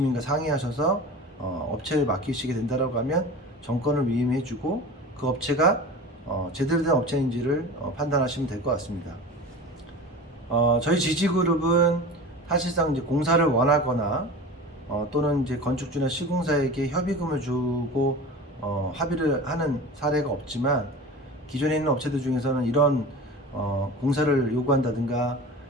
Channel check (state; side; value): normal; both; correlation 0.34